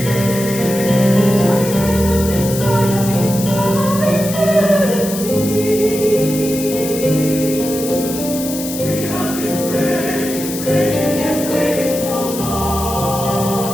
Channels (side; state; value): left; noise; hiss, 8 dB below the sound